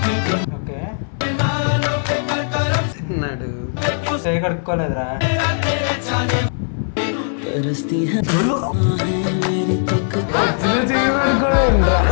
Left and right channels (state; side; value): silent; right; 66 dB below the other